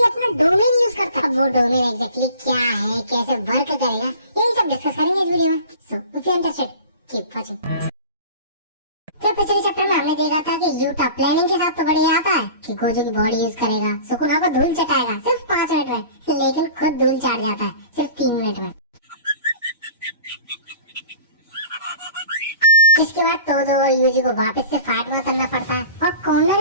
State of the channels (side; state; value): both; inverted; correlation -0.41